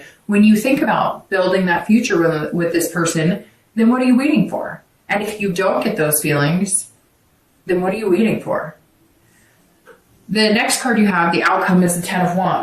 when you think about building that future with this person, then what are you waiting for? And if you don't get those feelings, then what are you waiting for? The next card you have, the outcome, is the 10 of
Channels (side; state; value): both; identical; correlation 1.00